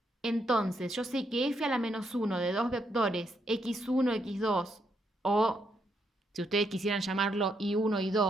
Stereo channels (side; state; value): both; normal; correlation 0.77